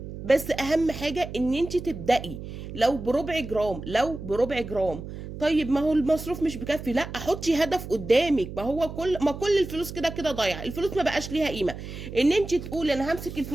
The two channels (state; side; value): noise; right; hum, 10 dB below the sound